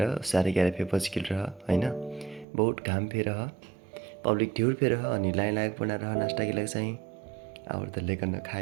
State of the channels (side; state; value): left; drops out; at 2.5 s